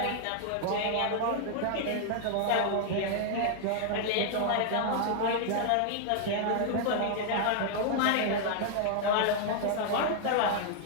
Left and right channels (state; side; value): different; both; correlation -0.01